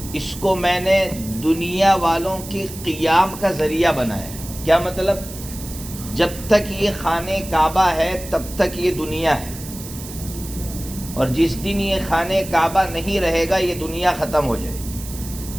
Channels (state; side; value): noise; right; hiss, 13 dB below the sound